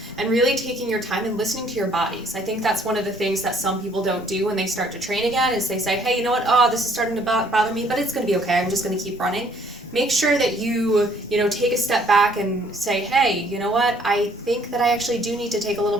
and really taking your time and listening to your bodies. I think that's one of the things that some people don't do when they start to train again, is they say, hey, you know what, this is starting to bother me, but it's going to be okay, I'm just going to keep running. Make sure that you take a step back and say, hey, you know what, I think that I actually do need to take a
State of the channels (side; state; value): both; normal; correlation 0.62